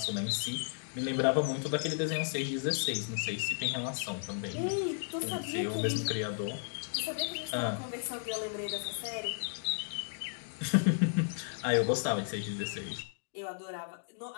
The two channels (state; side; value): silent; right; digital silence